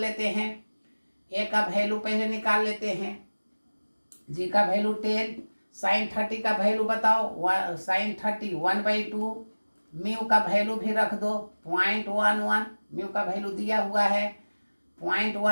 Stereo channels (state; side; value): inverted; both; correlation -1.00